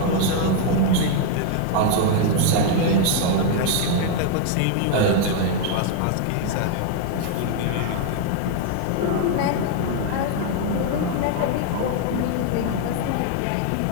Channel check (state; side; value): different; both; correlation 0.00